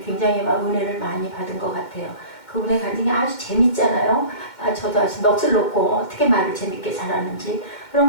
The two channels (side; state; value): right; late; 2.1 ms